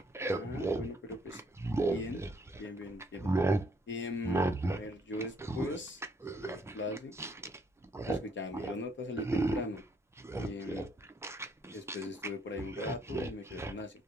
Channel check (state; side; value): normal; both; correlation 0.68